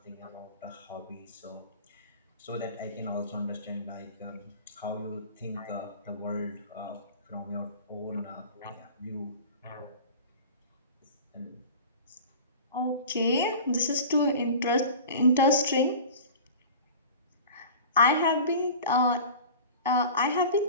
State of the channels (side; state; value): both; inverted; correlation -0.38